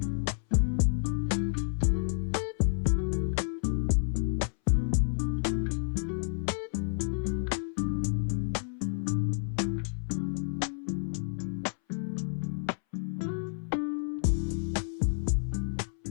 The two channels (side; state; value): right; silent; 58 dB below the other